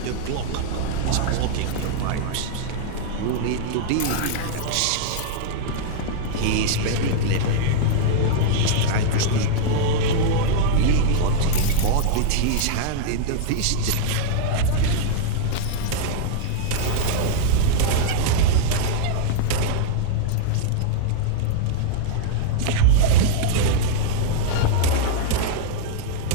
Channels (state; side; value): different; both; correlation -0.01